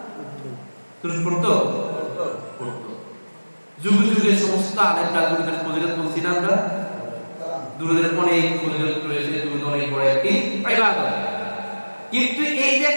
দুরূদ পড়তো? পড়তো। যুগে যুগে সমস্ত আলেমরা দুরূদের ফজিলত বলছি না আমরা? দুরূদের অনেক ফজিলত রয়েছে, দুরূদ অনেক বড় একটি ইবাদত। কিন্তু এই যে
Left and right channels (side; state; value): both; inverted; correlation -1.00